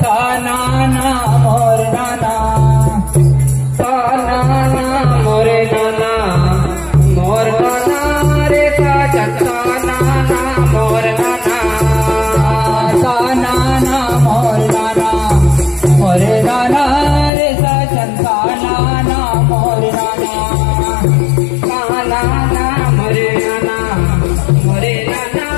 का नाना मोर नाना मोरे नाना मोर नाना रे सजन का नाना मोर नाना नाना मोर नाना मोरे नाना रे सजन का नाना मोर नाना नाना मोरे नाना मोरे नाना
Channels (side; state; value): right; drops out; at 17.3 s